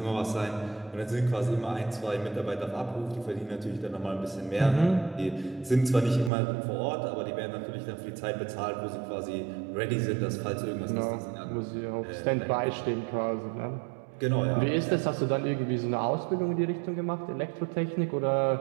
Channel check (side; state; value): left; drops out; at 6.3 s